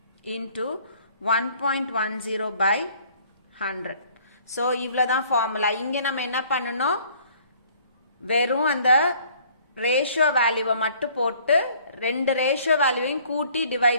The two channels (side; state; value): both; inverted; correlation -0.57